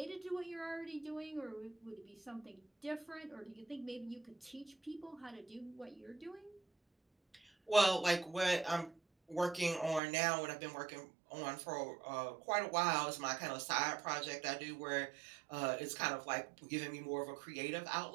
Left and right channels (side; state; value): left; drops out; at 10.0 s